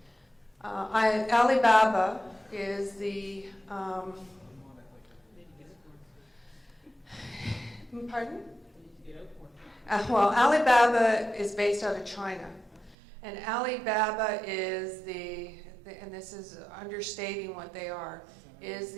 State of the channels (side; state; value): left; drops out; at 13.0 s